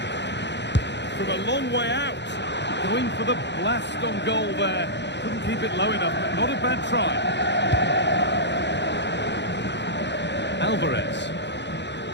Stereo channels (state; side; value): late; right; 0.51 ms